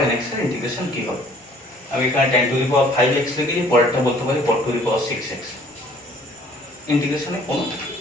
nx এর ইন্টিগ্রেশন কি হবে। আমি এখানে tan to the power 5x লিখেছি, পরেরটা বলতে পারি cot to the power 6x। ইন্টিগ্রেশনে কোনো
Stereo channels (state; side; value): normal; both; correlation 0.56